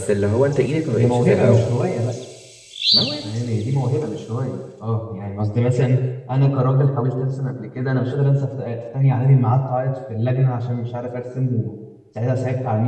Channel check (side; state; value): both; identical; correlation 1.00